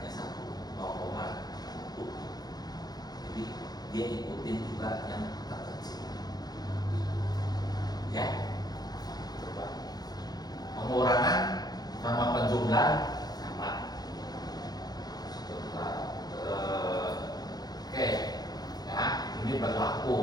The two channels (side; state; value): right; late; 0.19 ms